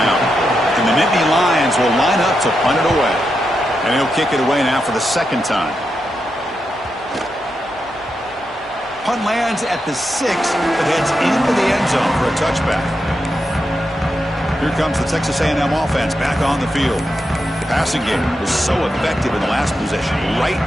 And the Nittany Lions will line up to punt it away. And he'll kick it away now for the second time. Punt lands at the 6, but heads into the end zone for a touchback. Here comes the Texas A&M offense back on the field. The passing game was so effective in the last possession, right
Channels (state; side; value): normal; both; correlation 0.86